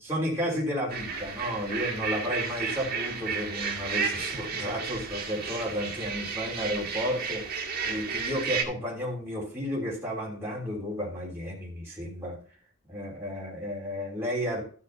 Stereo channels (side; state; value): both; normal; correlation 0.30